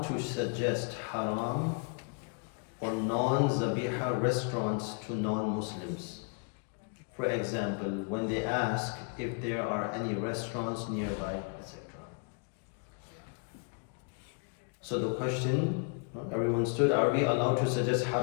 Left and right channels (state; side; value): quieter; right; 37.8 dB